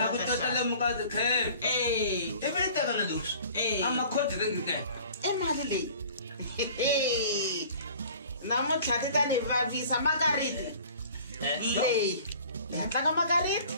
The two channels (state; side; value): inverted; both; correlation -0.48